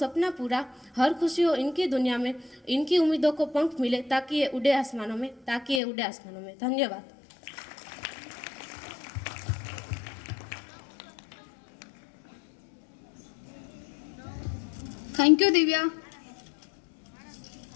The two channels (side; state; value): right; drops out; at 5.8 s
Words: पूरा, हर खुशी हो इनकी दुनिया में। इनकी उम्मीदों को पंख मिले ताकि ये उड़े आसमानों में। धन्यवाद। Thank you Divya.